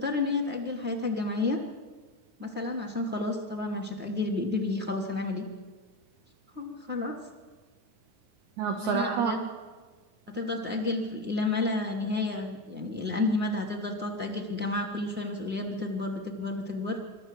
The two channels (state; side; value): late; left; 9.6 ms